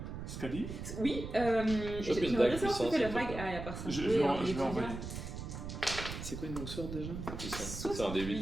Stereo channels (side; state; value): right; noise; rumble, 7 dB below the sound